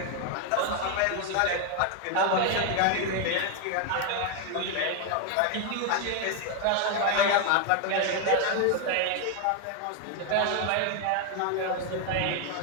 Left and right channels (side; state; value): both; different; correlation 0.01